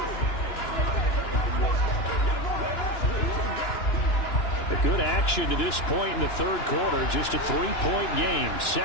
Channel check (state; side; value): late; right; 2.9 ms